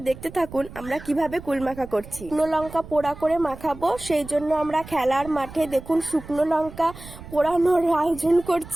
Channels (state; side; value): noise; right; rumble, 16 dB below the sound